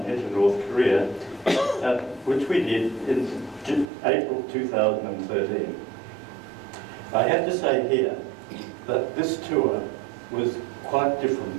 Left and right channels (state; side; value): drops out; left; at 3.9 s